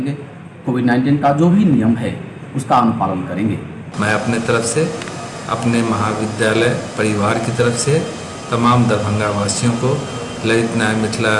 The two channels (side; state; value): both; identical; correlation 1.00